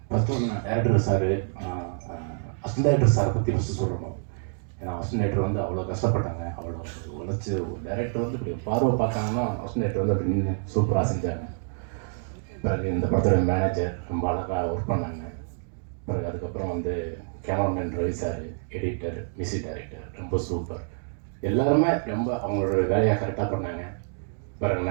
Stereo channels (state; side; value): silent; left; 60 dB below the other